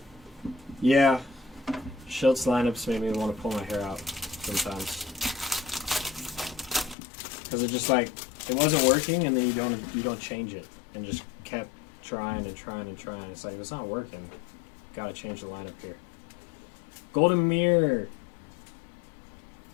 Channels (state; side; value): drops out; right; at 7.0 s